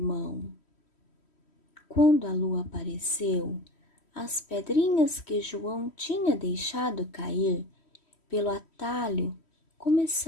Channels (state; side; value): late; right; 3.1 ms